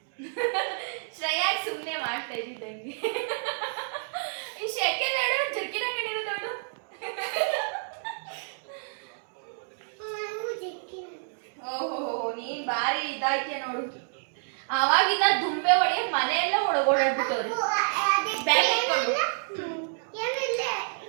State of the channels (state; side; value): silent; left; digital silence